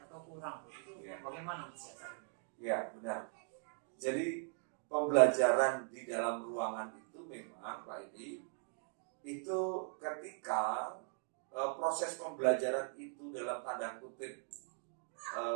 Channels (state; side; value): silent; left; 51 dB below the other